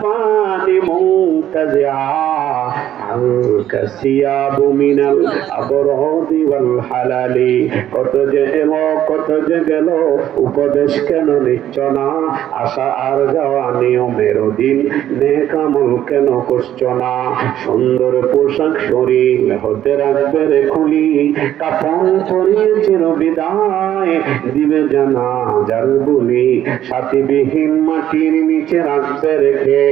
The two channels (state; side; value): quieter; left; 11.6 dB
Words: মুনতাজিআ আনকা সিয়াবু মিনাল আবরাদি ওয়াল হালালি। কত যে এলো কত যে গেল, উপদেশ কেন নিচ্ছ না? আশা আর যাওয়া নিয়মের দিন, নেক আমল কেন করছো না? সুন্দর পোশাক শরীর হতে রাখবে রে খুলি, কাফন পরিয়ে চির বিদায় দিবে জানাজার বলি, সাথীবিহীন মাটির নিচে রাখবে রেখে,